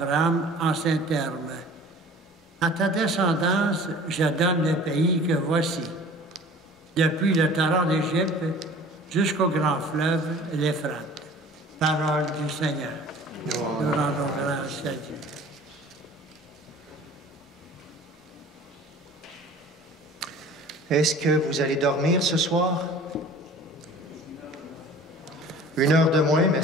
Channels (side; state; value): both; normal; correlation 0.46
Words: en ces termes. « À ta descendance, je donne le pays que voici, depuis le torrent d'Égypte jusqu'au grand fleuve, l'Euphrate. » Parole du Seigneur. Nous rendons grâce à Dieu. Est-ce que vous allez dormir ce soir? 1 heure de moins,